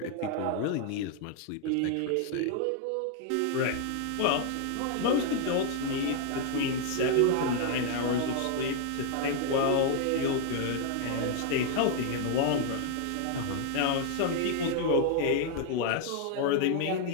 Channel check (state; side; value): different; both; correlation 0.00